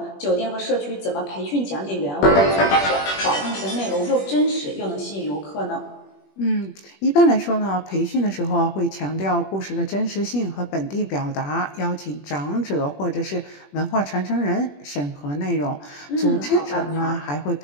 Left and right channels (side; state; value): right; late; 21 ms